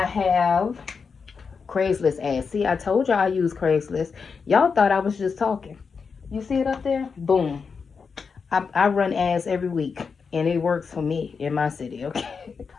have Craigslist ads. See, I told y'all I use Craigslist. Y'all thought I was just talking. You see it up there? Boom. I run ads every week, and it works for me in my city, okay?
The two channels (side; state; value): right; quieter; 5.5 dB